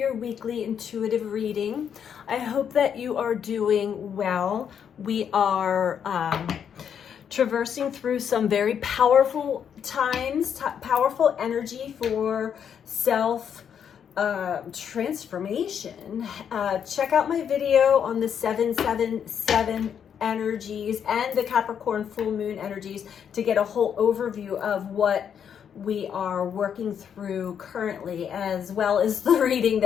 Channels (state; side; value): quieter; right; 8.1 dB